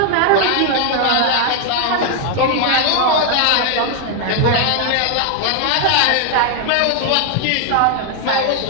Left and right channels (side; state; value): both; different; correlation 0.00